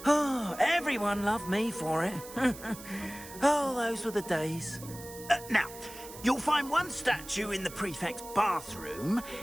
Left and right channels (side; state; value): right; noise; hiss, 15 dB below the sound